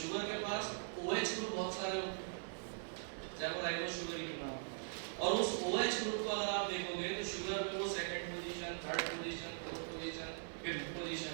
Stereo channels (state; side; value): silent; left; digital silence